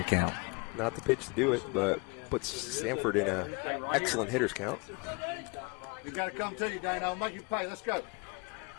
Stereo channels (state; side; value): quieter; right; 30.1 dB